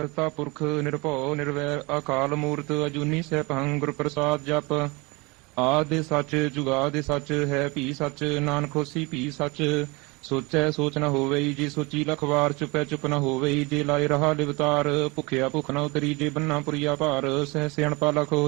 ਪੁਰਖ ਨਿਰਭਉ ਨਿਰਵੈਰ ਅਕਾਲ ਮੂਰਤ ਅਜੂਨੀ ਸੈਭੰ ਗੁਰ ਪ੍ਰਸਾਦ ਜਪ। ਆਦਿ ਸੱਚ ਜੁਗਾਦਿ ਸੱਚ ਹੈ ਭੀ ਸੱਚ ਨਾਨਕ ਹੋਸੀ ਭੀ ਸੱਚ। ਸੋਚੈ ਸੋਚ ਨ ਹੋਵਈ ਜੇ ਸੋਚੀ ਲਖ ਵਾਰ ਚੁਪੈ ਚੁਪ ਨ ਹੋਵਈ ਜੇ ਲਾਇ ਰਹਾ ਲਿਵਤਾਰ। ਭੁਖਿਆ ਭੁਖ ਨ ਉਤਰੀ ਜੇ ਬੰਨਾ ਪੁਰੀਆ ਭਾਰ ਸਹਿ ਸਿਆਣਪਾ ਲਖ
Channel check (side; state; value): left; quieter; 26.1 dB